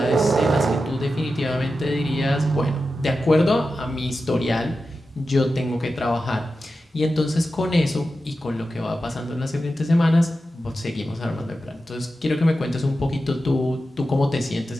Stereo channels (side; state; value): both; normal; correlation 0.91